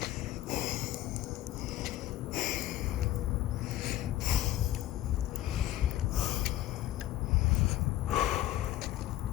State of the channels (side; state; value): right; quieter; 14.1 dB